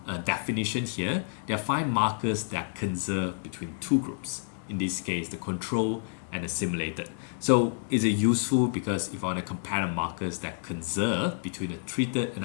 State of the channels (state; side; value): silent; right; digital silence